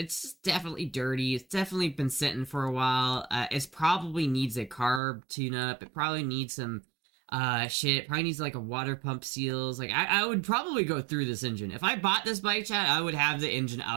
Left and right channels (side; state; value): left; drops out; at 5.0 s